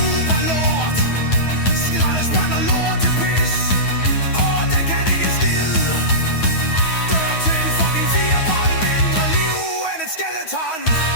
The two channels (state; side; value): late; right; 9.3 ms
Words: lort. Skraldespand og lort til pis. Den kan ikke en skid. Dør til en fucking firebold. Mindre liv end et skeleton.